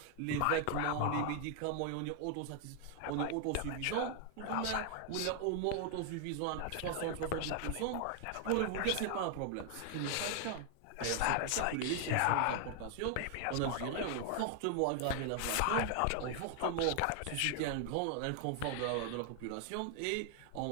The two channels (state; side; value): different; both; correlation 0.00